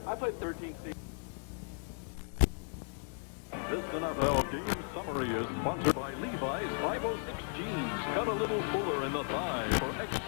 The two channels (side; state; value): right; silent; 54 dB below the other